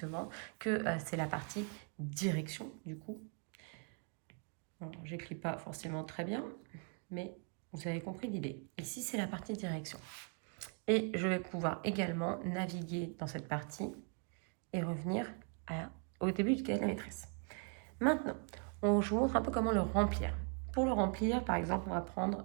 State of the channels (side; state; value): left; quieter; 38.1 dB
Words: que c'est la partie direction, du coup. Bon, j'écris pas forcément très bien, mais vous avez compris l'idée. Ici, c'est la partie direction. Et je vais pouvoir également naviguer dans cette partie et revenir au début du cahier de la maîtresse. Maintenant, je vous montre un peu comment le remplir. Pour le remplir, par exemple, on va prendre,